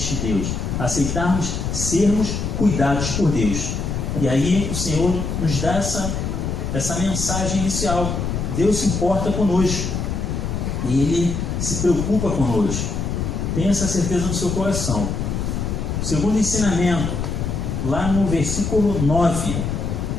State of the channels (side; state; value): left; noise; rumble, 2 dB below the sound